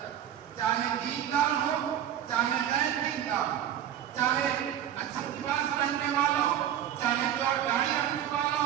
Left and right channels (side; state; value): left; quieter; 10.7 dB